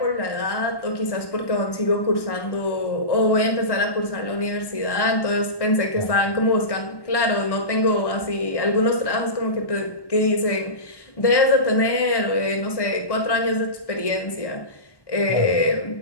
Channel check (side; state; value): right; late; 1.1 ms